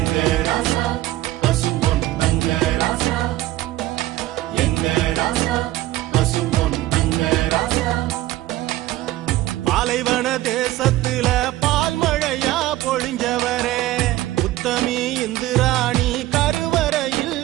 பாலைவன தேசத்துல பால் மழையா பொழிஞ்சவரே, உத்தமி இந்திராணி கருவறையில்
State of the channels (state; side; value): quieter; left; 16.1 dB